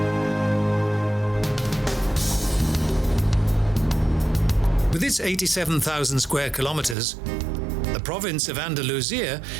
With its 87,000 square kilometers, the province of Andalusia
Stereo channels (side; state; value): left; drops out; at 7.0 s